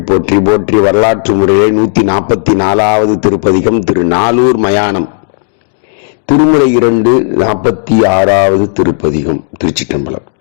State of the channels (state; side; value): silent; right; digital silence